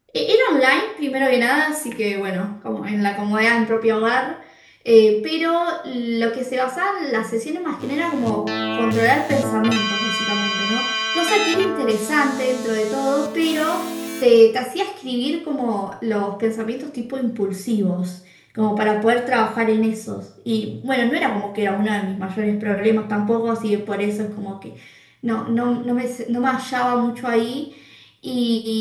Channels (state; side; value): identical; both; correlation 1.00